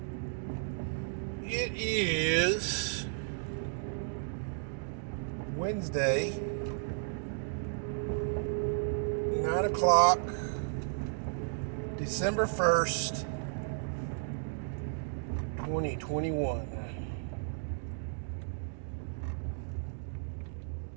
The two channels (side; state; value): left; silent; digital silence